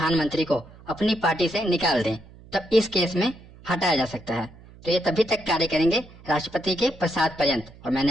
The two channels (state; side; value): noise; right; hum, 22 dB below the sound